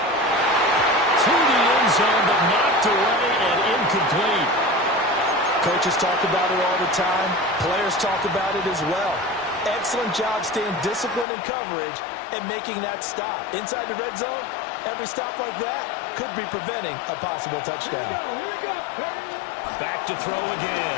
To the end zone, but knocked away and incomplete. Coaches talk about it all the time. Players talk about it as well. Excellent job staying disciplined in coverage and making that stop. Inside the red zone, every stop like that could be preventing a possible touchdown. Here we go. Back to throw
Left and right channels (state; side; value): drops out; right; at 11.2 s